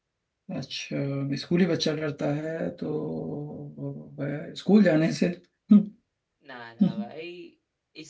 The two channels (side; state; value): both; identical; correlation 1.00